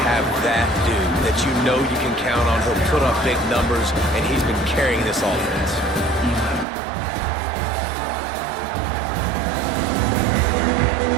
have that dude that you know you can count on. He'll put up big numbers, and he's been carrying this offense.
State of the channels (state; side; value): drops out; left; at 6.7 s